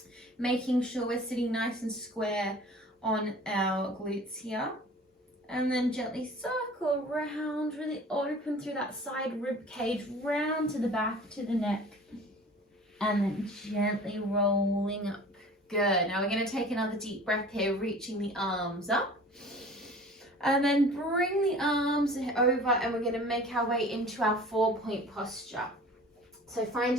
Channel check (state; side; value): normal; both; correlation 0.44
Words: Making sure we're sitting nice and square on our glutes here. And then gently circle around, really open through that side rib cage, round to the back, to the neck. And then gently rolling up. Good. Now we're going to take another deep breath here, reaching the arms up. And then bring the arms over, and we're going to make our way into our 4-point posture. So